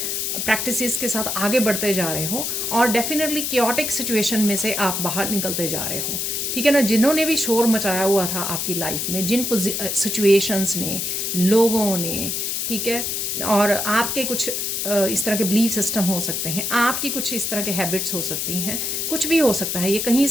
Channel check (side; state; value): left; noise; hiss, 1 dB below the sound